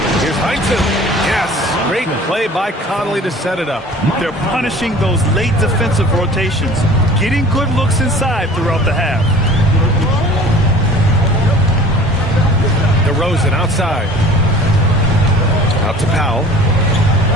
Here's Heinsohn. Yes, great play by Conley to set it up. They're punishing those late defensive rotations, getting good looks inside throughout the half. DeRozan outside. Out to Powell.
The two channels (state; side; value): normal; both; correlation 0.45